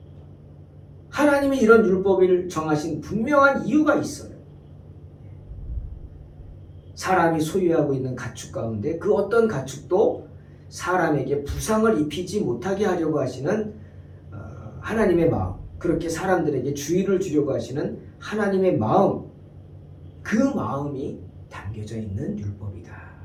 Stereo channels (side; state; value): both; identical; correlation 1.00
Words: 하나님이 이런 율법을 정하신 분명한 이유가 있어요. 사람이 소유하고 있는 가축 가운데 그 어떤 가축도 사람에게 부상을 입히지 못하게 하려고 하시는 하나님의 마음, 그렇게 사람들에게 주의를 주려고 하시는 하나님의 마음, 그 마음이 담겨져 있는 율법이다.